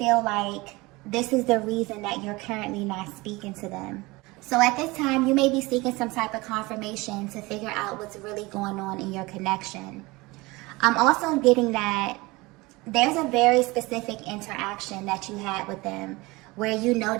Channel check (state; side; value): quieter; left; 22.6 dB